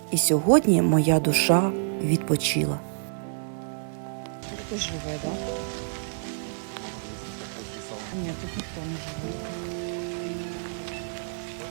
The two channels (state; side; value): silent; left; 60 dB below the other